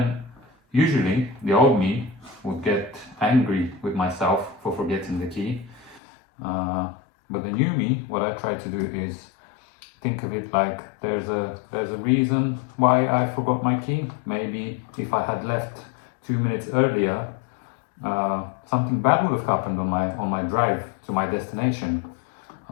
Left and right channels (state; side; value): drops out; right; at 6.0 s